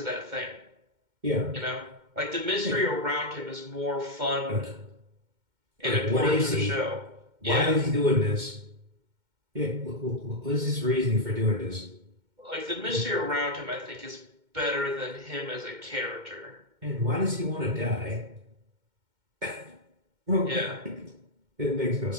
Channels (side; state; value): left; late; 2.1 ms